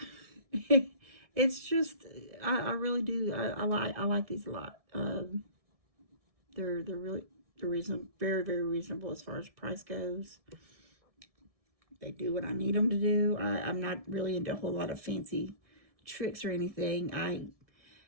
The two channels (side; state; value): left; late; 1.7 ms